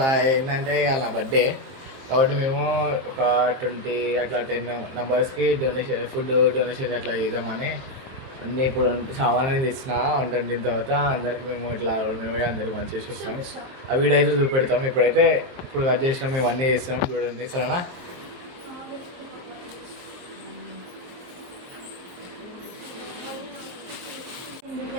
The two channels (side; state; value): left; late; 23 ms